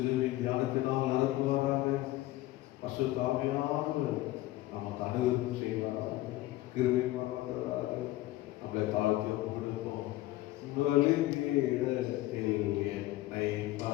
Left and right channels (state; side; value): quieter; right; 16.8 dB